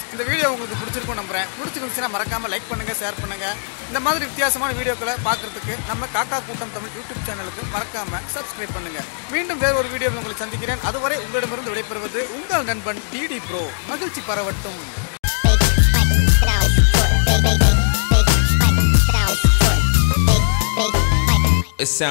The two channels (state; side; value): silent; right; digital silence